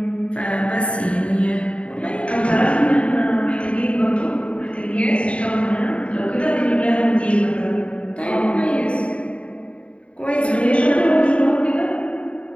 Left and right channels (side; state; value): right; late; 0.060 ms